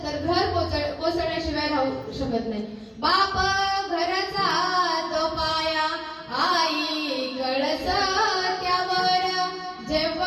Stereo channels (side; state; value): both; identical; correlation 1.00